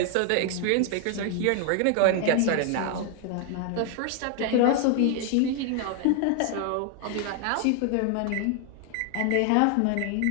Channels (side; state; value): both; different; correlation 0.00